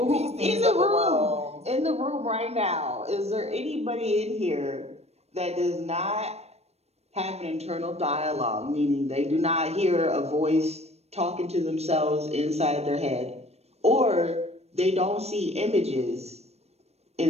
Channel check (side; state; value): left; late; 0.31 ms